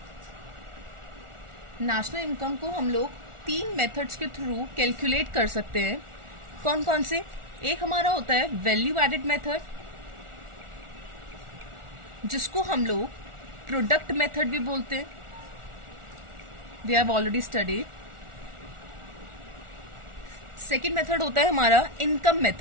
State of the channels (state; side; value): late; left; 1.4 ms